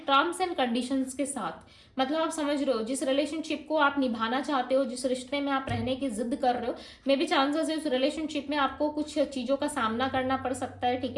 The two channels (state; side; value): identical; both; correlation 1.00